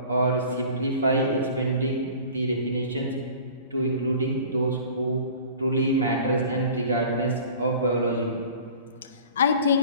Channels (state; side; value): inverted; both; correlation -0.43